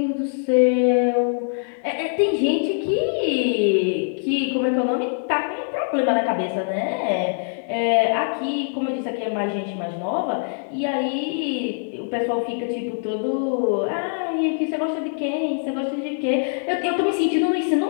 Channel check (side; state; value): right; silent; digital silence